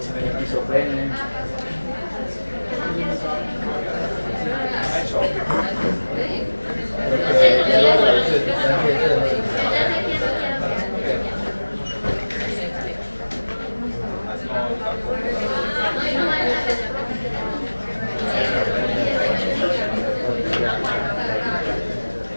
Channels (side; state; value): both; inverted; correlation -1.00